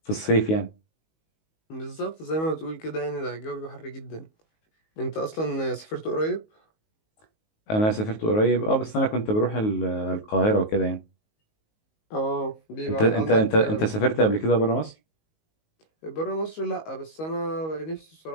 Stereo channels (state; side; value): late; right; 19 ms